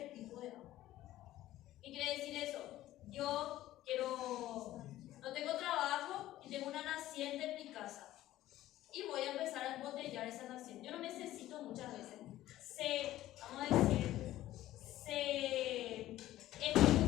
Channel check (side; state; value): right; quieter; 14.6 dB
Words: tipo de agua. ¿Qué quiere decir eso? Yo no tengo trabajo y tengo una naciente en mi casa y voy a empezar a embotellar esa naciente. Yo no necesito muchas veces. Es